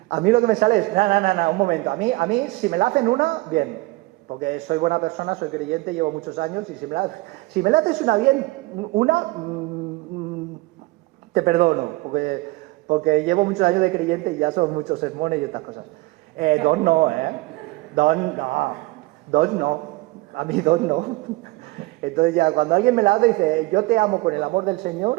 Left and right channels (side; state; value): left; quieter; 21.7 dB